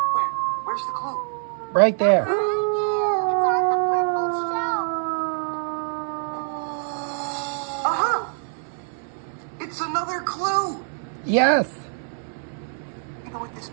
Where's the clue? Right there. It's on the purple shelf. Uh-huh. It's another clue. Yes. You know what this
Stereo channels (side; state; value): left; silent; digital silence